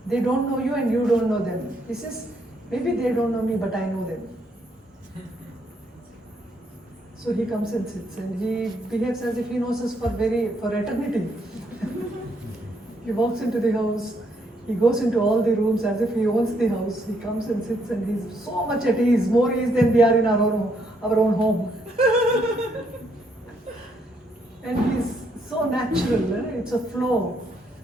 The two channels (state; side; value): normal; both; correlation 0.73